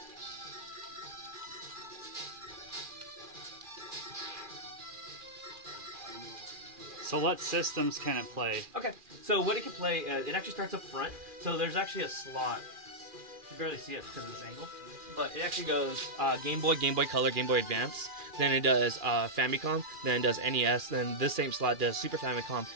So what systems can it play? okay, so what it can play, it actually starts up front. So there's actually a slot. You can barely see it because of this angle. But it actually goes Game Boy, Game Boy Color, Game Boy Advance. Then it does Famicom. Then it does NES. Then this same slot does Super Famicom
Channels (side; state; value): left; late; 2.4 ms